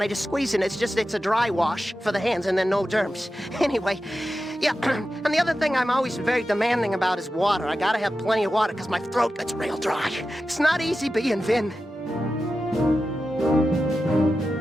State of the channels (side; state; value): both; normal; correlation 0.92